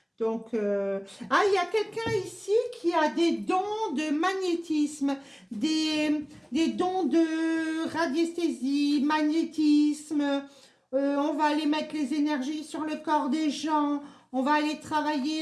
Donc, il y a quelqu'un ici qui a des dons de magnétisme, des dons de radiesthésie, magnétisme. On va aller mettre les énergies sur le corps des gens. On va aller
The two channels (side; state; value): both; identical; correlation 1.00